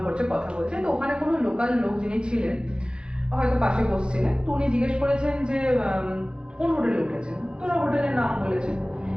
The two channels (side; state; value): left; late; 0.050 ms